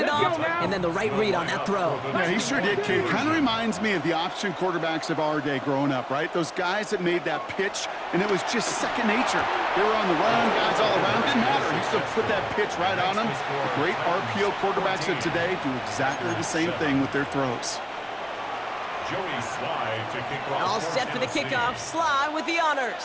it off, and then the right read on that throw. Yeah, he sure did, Kate. Kind of reminds me of the option quarterbacks of our day growing up, right? Those guys that made that pitch, and it was just second nature. They were on the run, guys all around. Didn't matter. He still put that pitch right on them. The great RPO quarterbacks of today do exactly the same thing with their throws. Joey Sly to kick off. All set for the kickoff. Sly with the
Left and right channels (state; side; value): identical; both; correlation 1.00